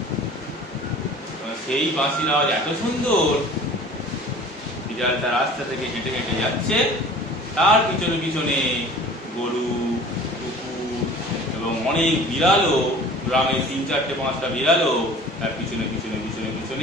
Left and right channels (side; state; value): both; normal; correlation 0.45